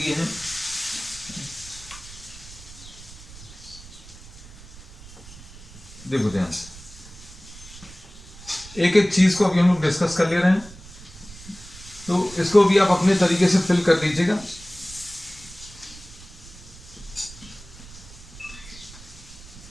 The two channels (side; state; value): right; noise; rumble, 18 dB below the sound